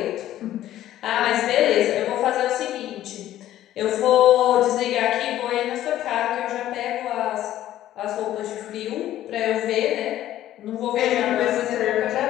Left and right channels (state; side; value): quieter; right; 13.0 dB